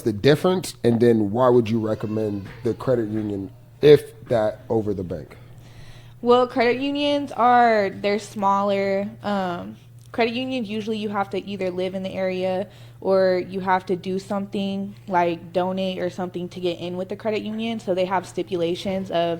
the difference, and then why would you recommend the credit union, if that, over the bank? Well, credit unions they're smaller. Credit unions, usually you have to either live in the area or you have to do something like donate or something to get in with the credit union. So they have stipulations of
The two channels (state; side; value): identical; both; correlation 1.00